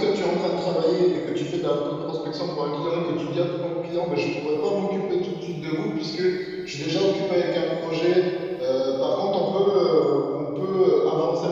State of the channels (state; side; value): identical; both; correlation 1.00